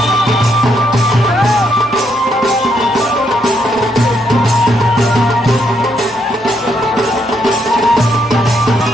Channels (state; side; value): noise; right; hum, 29 dB below the sound